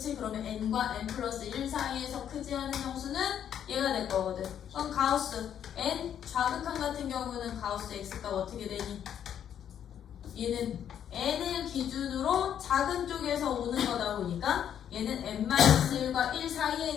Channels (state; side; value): quieter; right; 9.4 dB